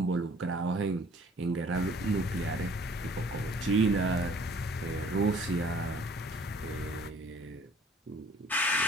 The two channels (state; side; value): normal; both; correlation 0.55